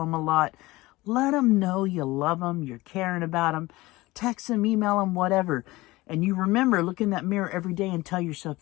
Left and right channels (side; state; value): right; quieter; 19.9 dB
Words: a lot. Let them know you love them, you're caring about them. Text them, email them, whatever. And you remember, look in that mirror every day and tell yourself